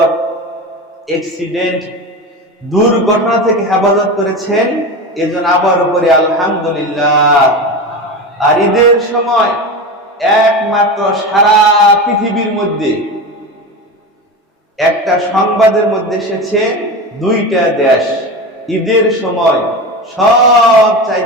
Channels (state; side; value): normal; both; correlation 0.25